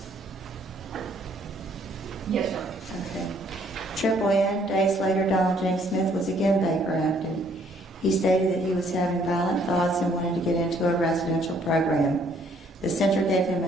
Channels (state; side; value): normal; both; correlation 0.64